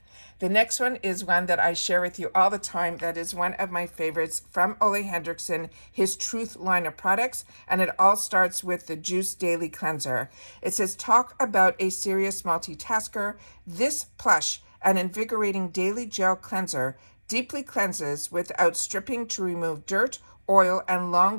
The next one is one that I share with you all the time. That is one of my favorites from Ole Henriksen, his Truth line of products. And it all starts with the Juice Daily Cleanser. It says, talk about a serious multitasker. This plush and invigorating daily gel cleanser deeply cleanses without stripping to remove dirt, oil, and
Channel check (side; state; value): both; inverted; correlation -1.00